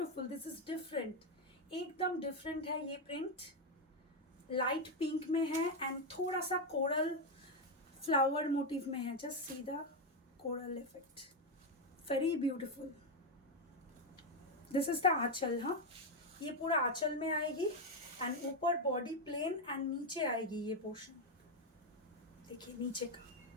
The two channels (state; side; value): normal; both; correlation 0.06